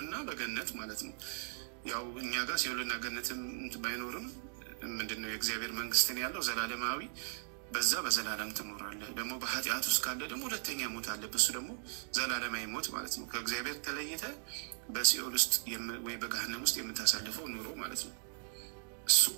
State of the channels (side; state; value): left; silent; digital silence